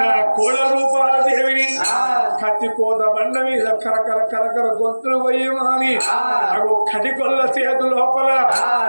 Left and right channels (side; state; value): both; inverted; correlation -1.00